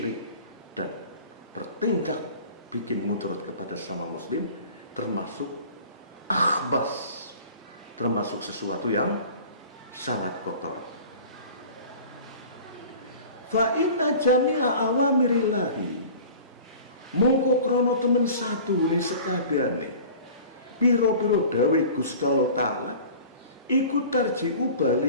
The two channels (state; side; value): inverted; both; correlation -0.43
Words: dan bertindak bikin mudarat kepada sama muslim, termasuk akhbas, termasuk sesuatu yang sangat kotor. Fa inna jami'a awamirillahi, mongko krono temen satu ni sekabehane piro-piro dawe Gusti Allah Ta'ala iku tarji'u